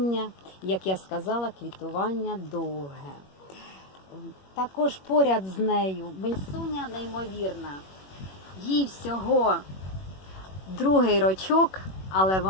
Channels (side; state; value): right; late; 21 ms